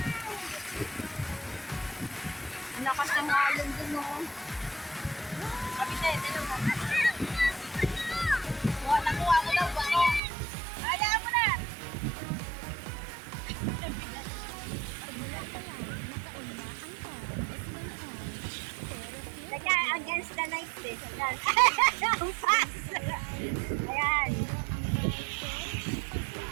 Lakas ng alon dun oh. Kapitay, tayo mo. Nakuha mo daw ba? Alaan mo na! Teka, against the lights eh. Ayan. Ang fast! Ayan.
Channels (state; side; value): drops out; left; at 10.2 s